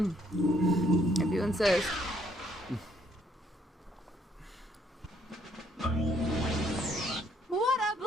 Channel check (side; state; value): both; normal; correlation 0.68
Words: if you insist. What a